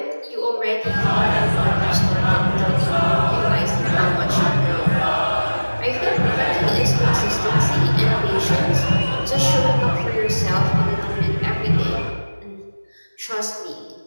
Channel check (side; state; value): both; inverted; correlation -1.00